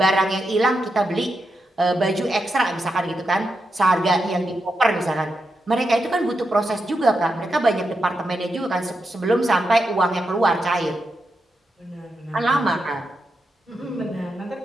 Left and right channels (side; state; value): both; normal; correlation 0.86